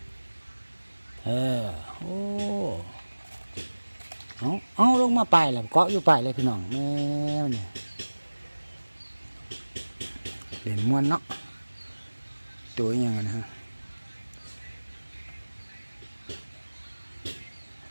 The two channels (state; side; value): inverted; both; correlation -1.00